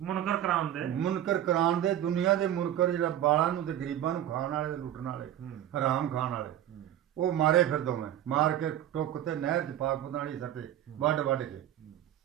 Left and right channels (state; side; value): quieter; left; 11.7 dB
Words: ਮੁਨਕਰ ਕਰਾਉਣ ਦੇ ਮੁਨਕਰ ਕਰਾਉਣ ਦੇ ਦੁਨੀਆ ਦੇ ਮੁਨਕਰ ਜਿਹੜਾ ਬਾਲਾਂ ਨੂੰ ਤੇ ਗਰੀਬਾਂ ਨੂੰ ਖਾਣ ਵਾਲੇ ਲੁੱਟਣ ਵਾਲੇ ਹਰਾਮ ਖਾਣ ਵਾਲੇ ਉਹ ਮਾਰੇ ਫਿਰ ਦੋਵੇਂ ਮਾਰ ਕੇ ਟੁੱਕ ਤੇ ਨਹਿਰ ਚ ਪਾਕ ਪਤਾਲੀ ਸੱਟੇ ਵੱਢ ਵੱਢ ਕੇ